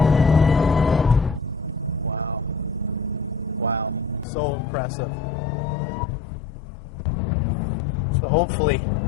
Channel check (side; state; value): right; drops out; at 4.2 s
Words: Wow. So impressive. So hopefully